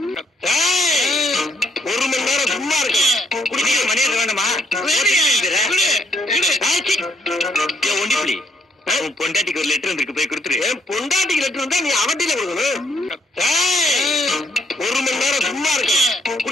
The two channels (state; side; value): normal; both; correlation 0.70